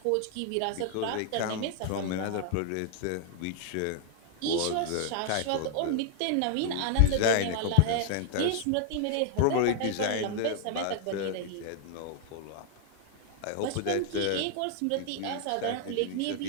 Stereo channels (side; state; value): both; different; correlation 0.00